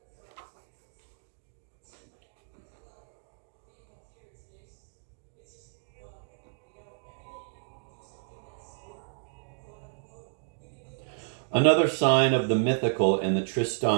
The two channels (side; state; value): left; silent; digital silence